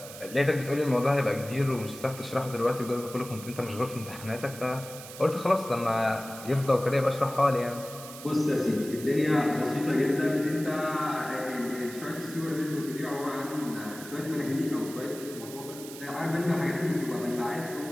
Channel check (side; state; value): right; noise; hiss, 14 dB below the sound